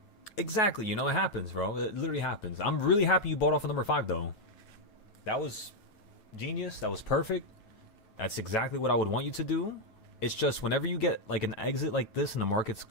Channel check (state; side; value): late; right; 9.3 ms